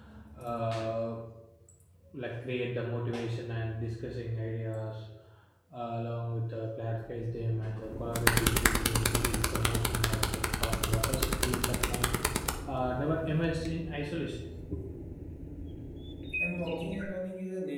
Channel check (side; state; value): both; identical; correlation 1.00